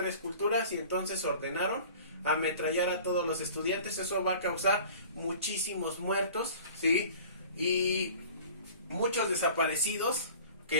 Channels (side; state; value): both; inverted; correlation -0.44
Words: Culturas y entonces ordenaron ametrallar a todos los estudiantes. Eso va a causar muchísimos muertos, ¿sí? Y muchos desaparecidos